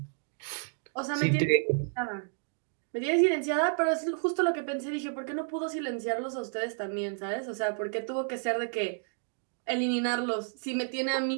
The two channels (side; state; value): left; silent; digital silence